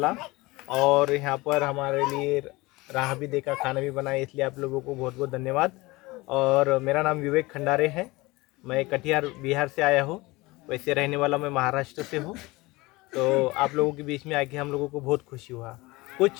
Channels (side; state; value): right; quieter; 21.9 dB